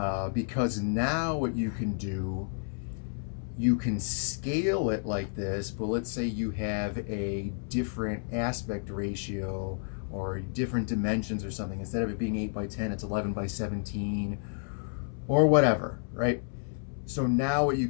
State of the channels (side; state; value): right; silent; 57 dB below the other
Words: because now what you can do, you can scale it like this, but let's say you have a different aspect ratio or different dimensions or something. Instead of it being 8x10, it's 11x17 or whatever, right? So now what you